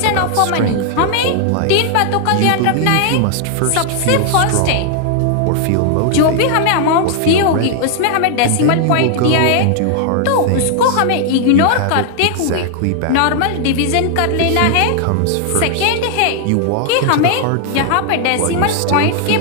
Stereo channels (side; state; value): both; different; correlation 0.00